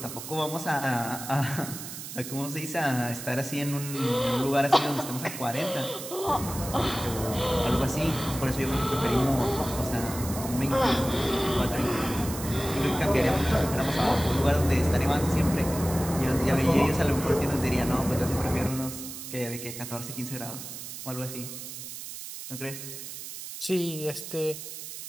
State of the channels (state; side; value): noise; right; hiss, 10 dB below the sound